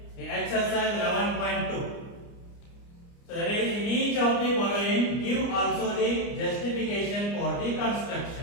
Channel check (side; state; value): right; late; 29 ms